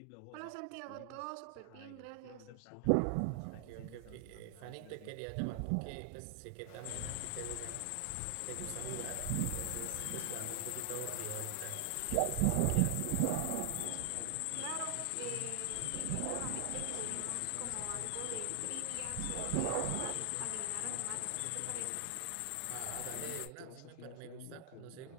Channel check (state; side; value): different; both; correlation 0.00